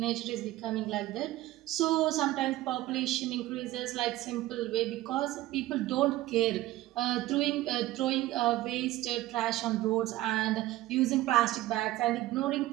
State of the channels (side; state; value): left; quieter; 16.3 dB